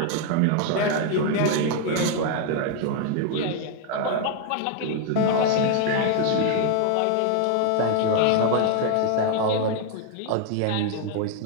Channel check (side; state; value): both; different; correlation 0.00